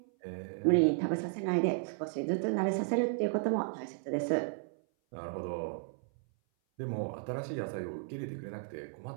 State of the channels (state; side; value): silent; left; 55 dB below the other